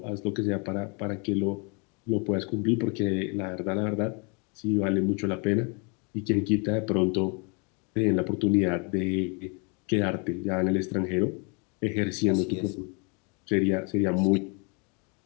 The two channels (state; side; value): quieter; right; 34.0 dB